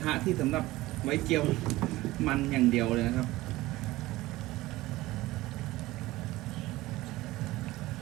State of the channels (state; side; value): quieter; left; 18.2 dB